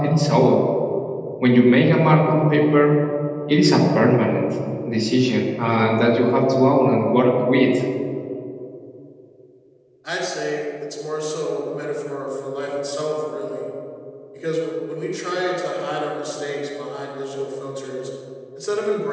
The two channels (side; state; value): both; identical; correlation 1.00